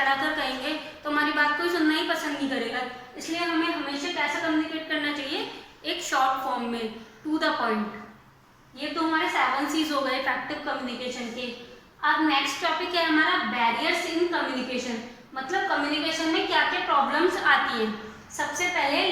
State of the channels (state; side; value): identical; both; correlation 1.00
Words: कर कहेंगे तो हमारी बात कोई सुनना ही पसंद नहीं करेगा। इसलिए हमें हमेशा कैसा कम्युनिकेट करना चाहिए, एक शॉर्ट फॉर्म में, टू द पॉइंट। ये तो हमारे 7 C's हो गए इफेक्टिव कम्युनिकेशन के। अब नेक्स्ट टॉपिक है हमारा बैरियर्स इन कम्युनिकेशन, मतलब कम्युनिकेशन में क्या क्या प्रॉब्लम्स आती हैं। सबसे पहले